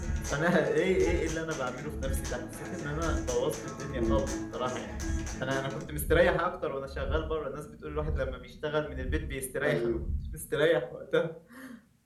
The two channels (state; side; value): identical; both; correlation 1.00